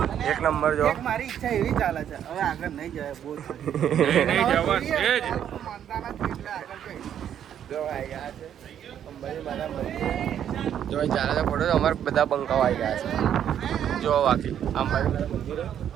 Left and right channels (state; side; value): quieter; left; 9.6 dB